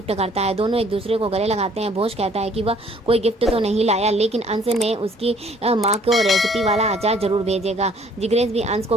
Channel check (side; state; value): both; normal; correlation 0.60